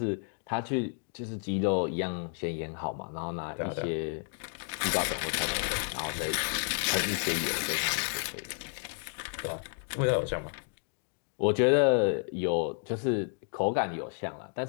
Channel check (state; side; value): silent; right; 57 dB below the other